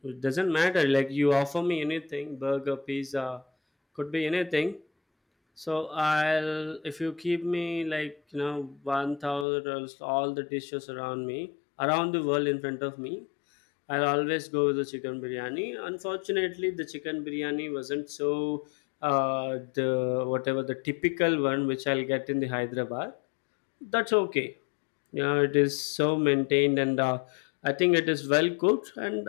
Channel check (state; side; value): drops out; right; at 9.5 s